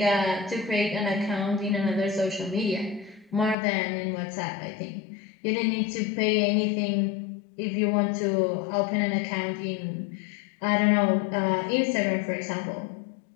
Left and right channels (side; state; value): right; drops out; at 3.6 s